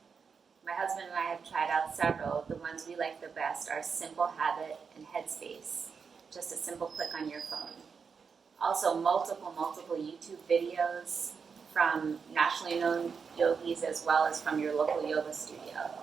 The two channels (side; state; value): left; quieter; 5.8 dB